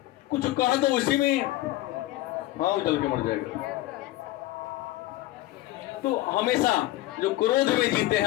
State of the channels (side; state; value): right; quieter; 16.6 dB